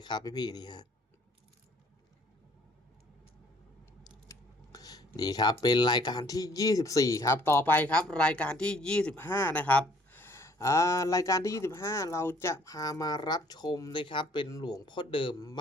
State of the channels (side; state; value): both; normal; correlation 0.59